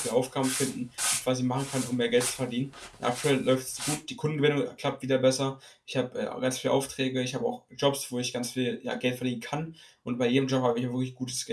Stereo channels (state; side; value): identical; both; correlation 1.00